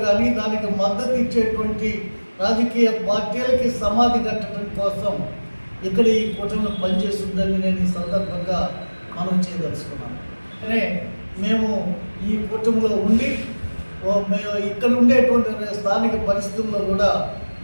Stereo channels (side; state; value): both; inverted; correlation -1.00